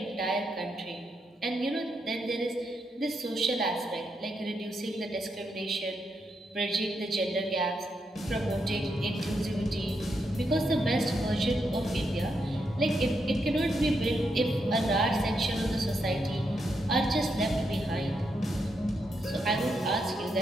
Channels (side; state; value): both; normal; correlation 0.82